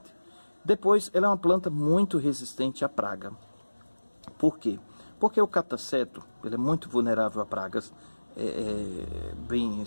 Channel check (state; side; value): inverted; both; correlation -1.00